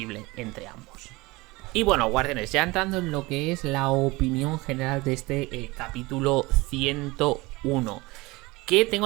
entre ambos. Y bueno, Guardianes, ya entrando en lo que es la opinión general de este capítulo 101, que tengo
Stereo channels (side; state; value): left; quieter; 22.5 dB